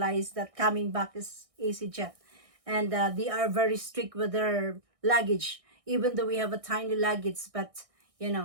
that coming back is EasyJet, and they are very strict with their luggage. Even though we have a tiny luggage, but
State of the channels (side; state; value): left; late; 1.6 ms